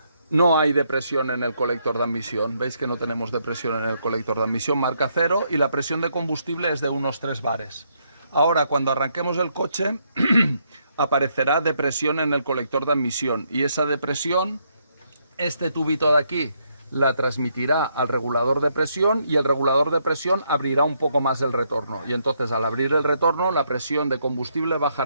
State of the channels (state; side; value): inverted; both; correlation -0.75